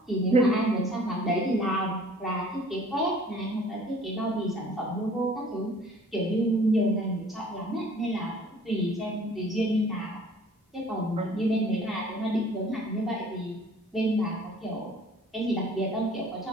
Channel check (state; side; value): normal; both; correlation 0.52